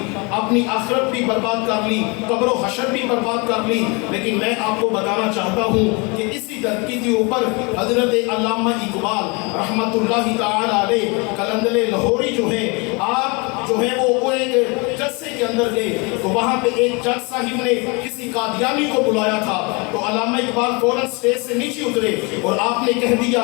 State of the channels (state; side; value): quieter; right; 29.6 dB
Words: اپنی آخرت بھی برباد کر لی، قبر و حشر بھی برباد کر لی، لیکن میں آپ کو بتانا چاہتا ہوں کہ اسی دھرتی کے اوپر حضرت علامہ اقبال رحمت اللہ تعالی علیہ قلندر لاہوری جو ہیں، آپ جو ہے وہ ایک جلسے کے اندر گئے تو وہاں پہ ایک جج صاحب نے کسی قادیانی کو بلایا تھا، تو علامہ اقبال فوراً اسٹیج سے نیچے اترے اور آپ نے کہہ دیا